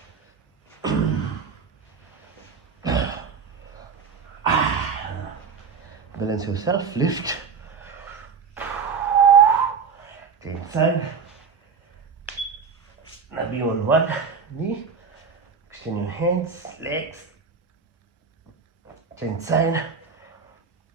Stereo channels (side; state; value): left; quieter; 5.8 dB